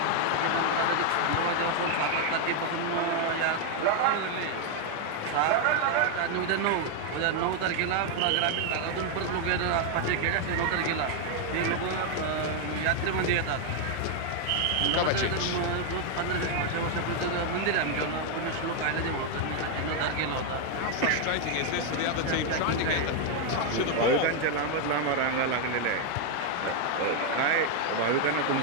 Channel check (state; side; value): different; both; correlation 0.01